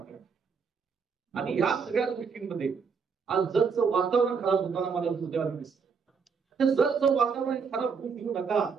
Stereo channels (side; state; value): left; quieter; 5.7 dB